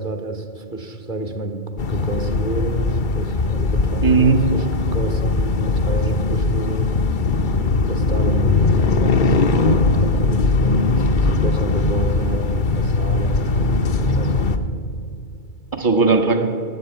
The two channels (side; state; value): right; late; 2.3 ms